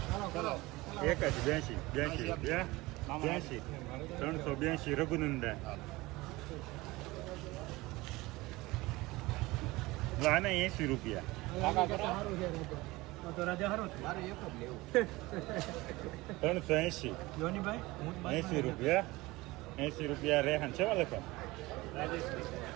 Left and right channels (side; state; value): left; quieter; 20.8 dB